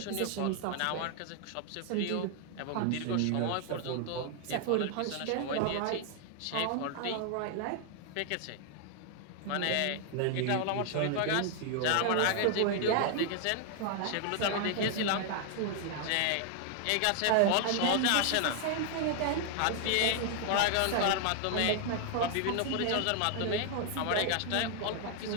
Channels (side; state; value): both; different; correlation 0.00